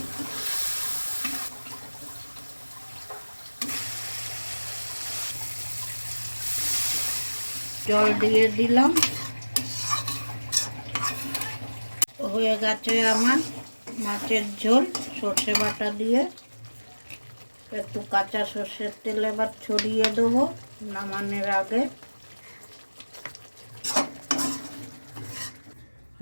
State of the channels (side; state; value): both; inverted; correlation -1.00